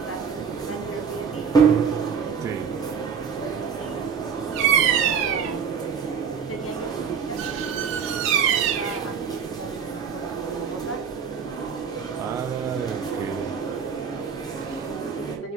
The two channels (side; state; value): left; quieter; 6.7 dB